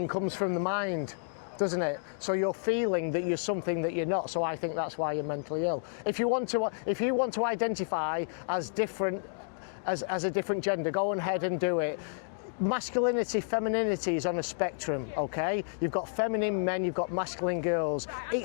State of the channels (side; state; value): right; quieter; 39.8 dB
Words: comes from the mind, doesn't it? So you're feeling that you're something that you're not, so I think that's why you're mentally ill. If you want to identify as different, as a different gender, go ahead and do it. Masculinity, femininity is on a spectrum, okay? You've got feminine men, you've got masculine girls.